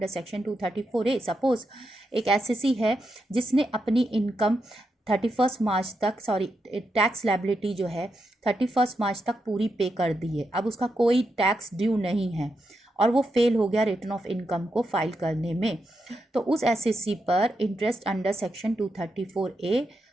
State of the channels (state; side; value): normal; both; correlation 0.85